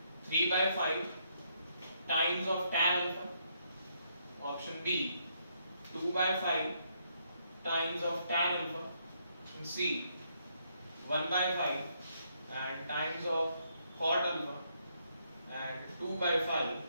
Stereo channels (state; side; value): inverted; both; correlation -0.74